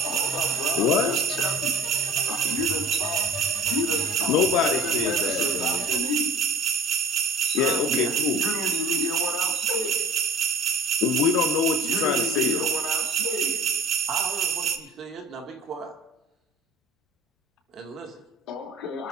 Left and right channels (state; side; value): normal; both; correlation 0.44